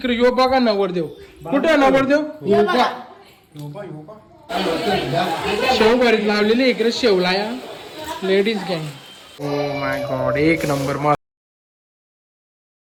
यो बघा नवरदेव. कुठे नवरदेव? शेव भरीत लावलेली इकडे शेवला या लेडीज गँग. ओ माय गॉड एक नंबर मस्त.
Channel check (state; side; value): identical; both; correlation 1.00